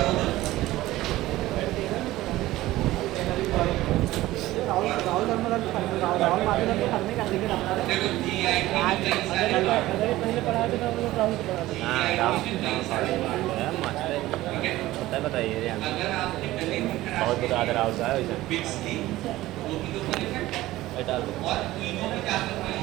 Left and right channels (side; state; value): left; quieter; 16.8 dB